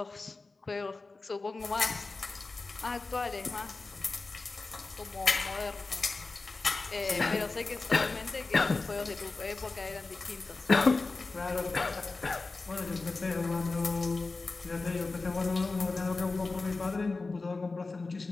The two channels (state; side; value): quieter; right; 3.7 dB